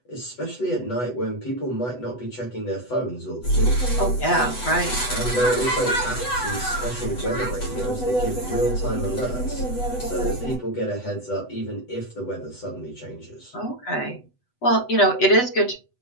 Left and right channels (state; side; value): late; right; 8.0 ms